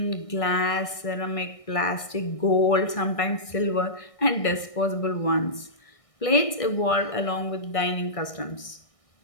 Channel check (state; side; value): late; right; 1.6 ms